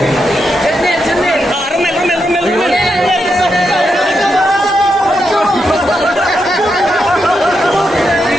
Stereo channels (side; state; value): both; normal; correlation 0.84